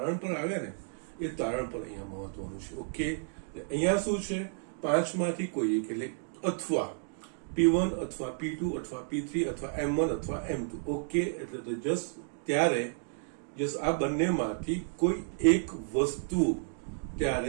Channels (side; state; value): left; silent; digital silence